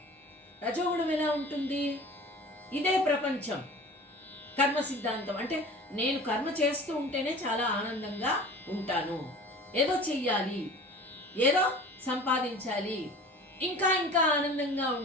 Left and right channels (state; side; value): normal; both; correlation 0.41